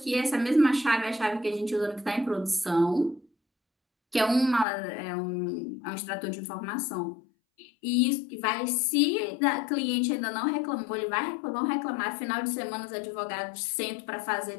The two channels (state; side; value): drops out; right; at 4.7 s